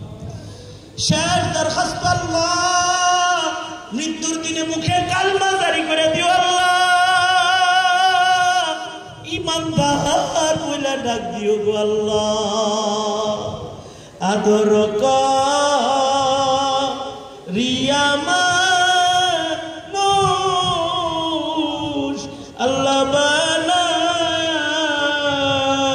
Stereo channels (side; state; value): both; identical; correlation 1.00